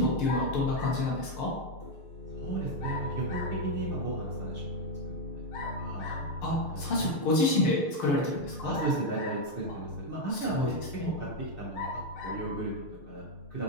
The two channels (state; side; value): late; right; 6.6 ms